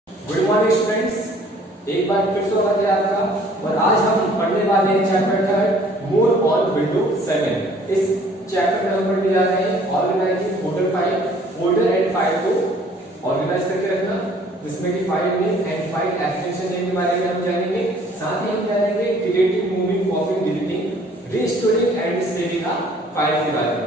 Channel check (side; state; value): both; normal; correlation 0.56